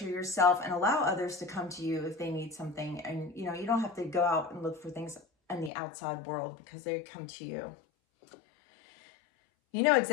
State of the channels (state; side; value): drops out; right; at 5.7 s